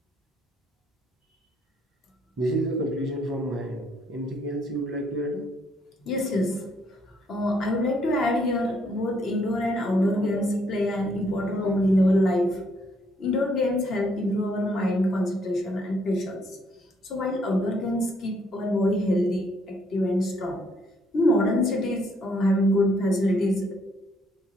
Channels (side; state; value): both; normal; correlation 0.69